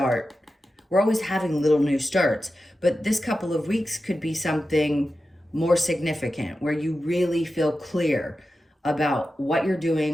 We're always having little new starts, but this couple of weeks could be something more significant where you really feel clear about what you're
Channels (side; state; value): both; normal; correlation 0.92